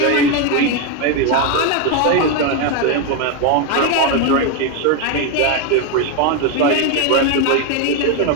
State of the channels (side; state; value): both; different; correlation 0.02